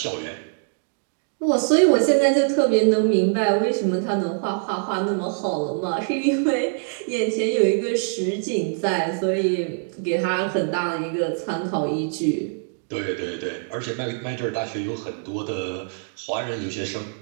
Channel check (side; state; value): left; silent; digital silence